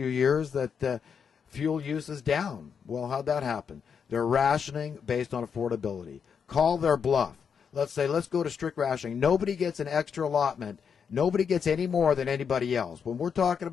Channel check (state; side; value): quieter; right; 6.8 dB